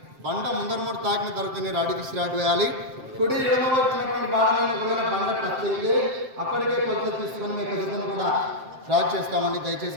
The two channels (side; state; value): left; late; 7.6 ms